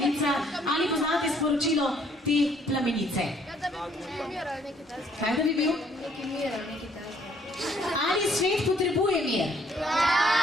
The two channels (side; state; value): both; normal; correlation 0.64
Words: Ali poznate sporočilo te plamenice? Da bi mir ali nekaj takega. Kaj da bi bil? Neki mir ali nekaj takega. Ali svet potrebuje mir?